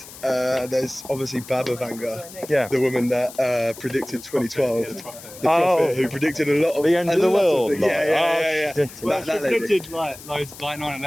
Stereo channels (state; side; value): noise; left; hiss, 17 dB below the sound